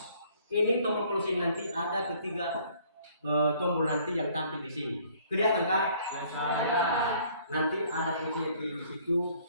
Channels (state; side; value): inverted; both; correlation -0.59